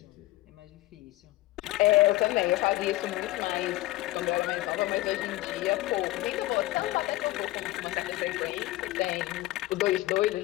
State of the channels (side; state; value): right; quieter; 17.6 dB